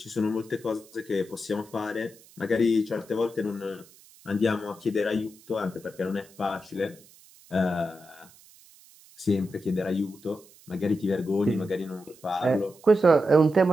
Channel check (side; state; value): right; noise; hiss, 25 dB below the sound